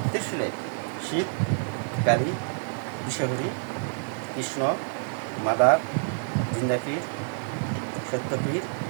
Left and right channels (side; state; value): left; silent; digital silence